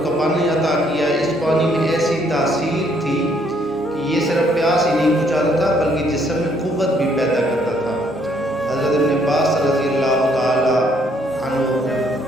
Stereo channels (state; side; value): normal; both; correlation 0.68